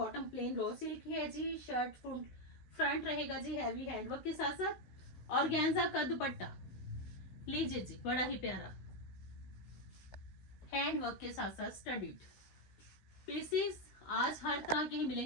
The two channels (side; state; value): right; late; 16 ms